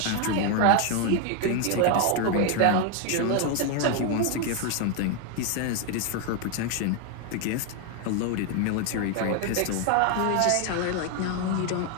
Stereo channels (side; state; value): both; different; correlation 0.01